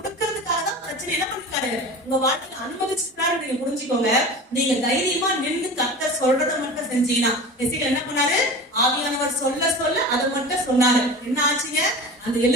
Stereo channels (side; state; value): both; normal; correlation 0.34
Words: தான் பிரச்சனை என்ன பண்ணிருக்காரு உங்க வாழ்க்கையில அனுமதிச்சிருக்காரு. நீங்க புரிஞ்சுக்கோங்க. நீங்க தைரியமா நின்று கர்த்தர் சொல்றதை மட்டும் செஞ்சீங்கன்னா, எசேக்கியேல் என்ன பண்ணாரு? ஆவியானவர் சொல்ல சொல்ல அதை மட்டும் சொன்னாரு. என்ன ஆச்சுங்க? அந்த